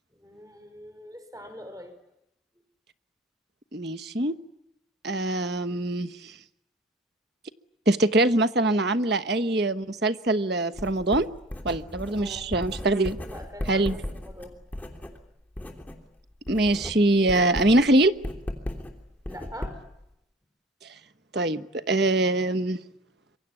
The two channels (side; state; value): both; normal; correlation 0.43